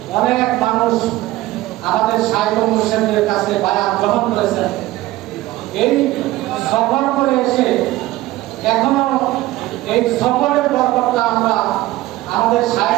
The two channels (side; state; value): left; quieter; 17.1 dB